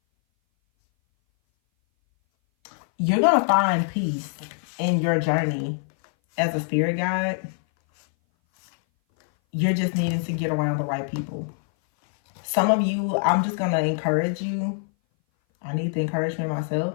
You're going to find peace in your journey as a spirit guide. You're just needing to get around the right people. Some of you, I'm just going to encourage you. I need the encouragement myself.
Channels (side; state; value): right; silent; 58 dB below the other